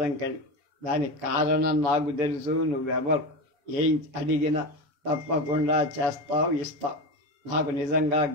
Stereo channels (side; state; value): left; late; 6.8 ms